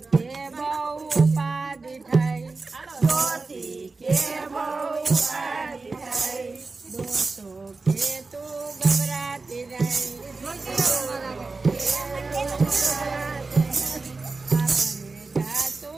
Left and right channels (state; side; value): quieter; left; 3.8 dB